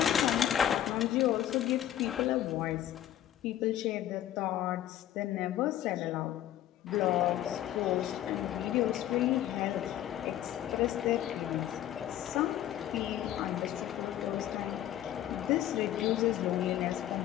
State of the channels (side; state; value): right; quieter; 12.0 dB